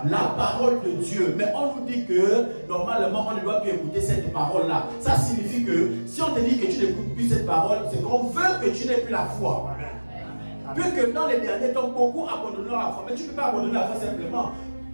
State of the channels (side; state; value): both; inverted; correlation -1.00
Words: La parole de Dieu. Mais on nous dit que normalement, on ne doit plus écouter cette parole-là. Ça signifie que si on te dit que tu n'écoutes plus cette parole, c'est qu'on veut que tu n'aies plus la foi. Puisque dans les derniers temps, beaucoup abandonneront la foi. Mais tu ne peux pas abandonner la foi simplement.